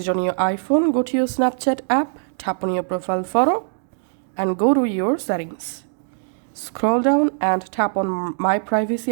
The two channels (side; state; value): left; silent; digital silence